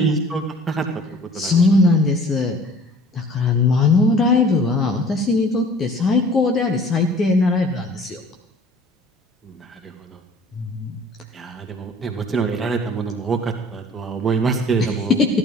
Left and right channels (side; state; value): both; normal; correlation 0.49